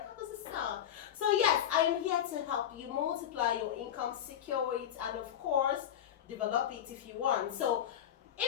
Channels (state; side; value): quieter; right; 10.2 dB